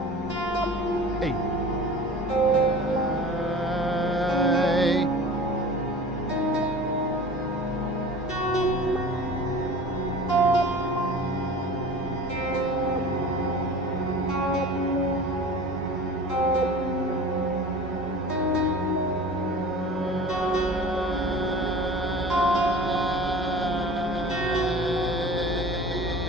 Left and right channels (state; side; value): normal; both; correlation 0.40